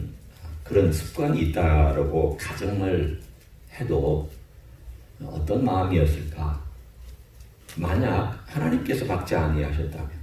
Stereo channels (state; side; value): identical; both; correlation 1.00